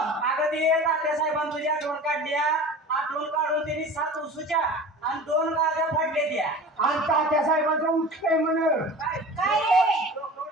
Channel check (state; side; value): normal; both; correlation 0.38